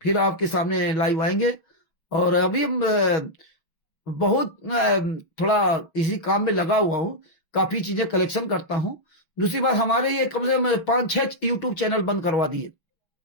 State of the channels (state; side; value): late; right; 6.1 ms